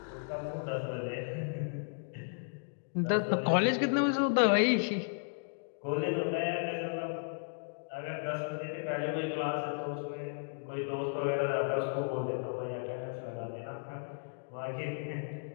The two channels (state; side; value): silent; right; digital silence